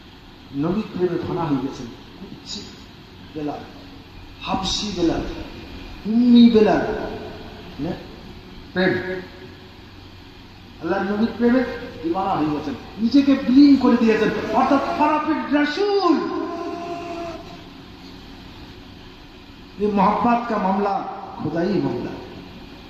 নবীর প্রেমে ফানা হয়ে গেছেন। কুচ্ছি বেলাল, হাবশি বেলাল, উম্মি বেলাল, প্রেম আল্লাহ নবীর প্রেমে দিওয়ানা হয়ে গেছেন, নিজেকে বিলীন করে দিয়েছেন। অর্থাৎ খারাপের রাসূল। ये मोहब्बत का मामला खुदाई मामला,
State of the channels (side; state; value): both; identical; correlation 1.00